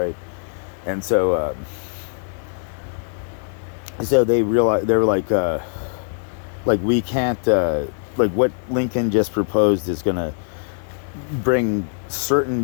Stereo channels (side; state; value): right; silent; digital silence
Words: And so they realized, they were like we can't, like what Lincoln just proposed is gonna bring